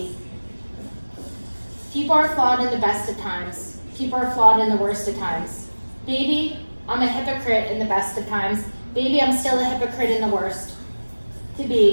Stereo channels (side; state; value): both; inverted; correlation -1.00